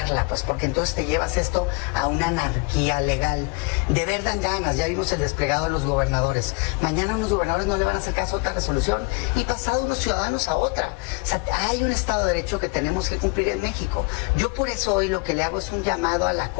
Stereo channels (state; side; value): quieter; right; 29.0 dB